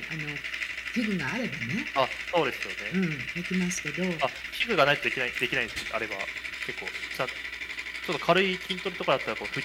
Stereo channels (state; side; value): identical; both; correlation 1.00